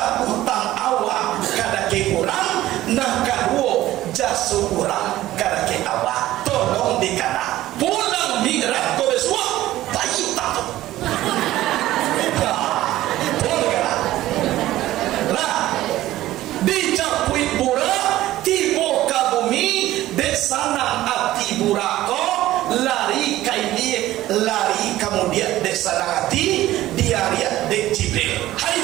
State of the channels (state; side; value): quieter; left; 15.2 dB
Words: utang awak kada ke kurang Nah kadua jasu urang kada ke awak tolong dikana pulang mirat ko besua tayu tato. Tolong kana. Lah dicapuit bura tibo ka bumi desana ati burako lari kaini lari kemudian desana hati diaria dek Jibril. Hai